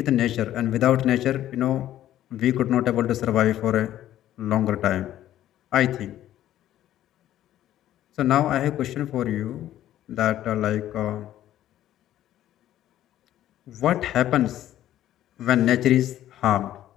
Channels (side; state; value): right; quieter; 12.7 dB